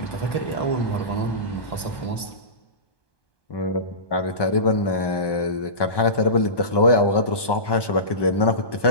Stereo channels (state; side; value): late; right; 1.2 ms